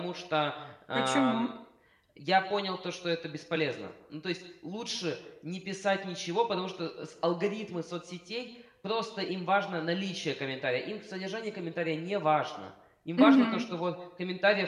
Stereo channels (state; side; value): identical; both; correlation 1.00